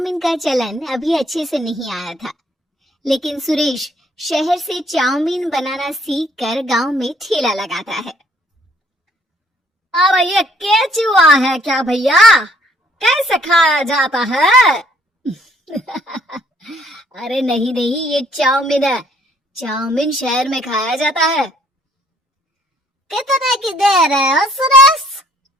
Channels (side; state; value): both; normal; correlation 0.63